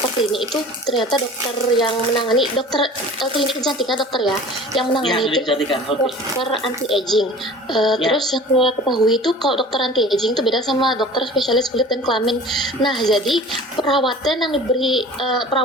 klinik itu ternyata dokter yang menangani klinik kecantikan dokter ya yang menangani itu dokter anti aging. Terus yang saya ketahui itu kalau dokter anti aging itu beda sama dokter spesialis kulit dan kelamin. Nah jadi perawatan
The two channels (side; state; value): both; normal; correlation 0.42